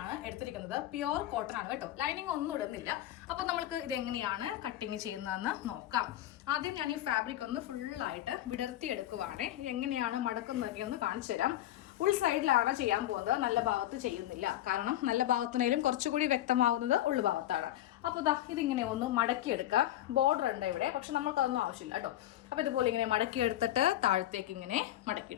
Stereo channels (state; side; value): quieter; right; 13.6 dB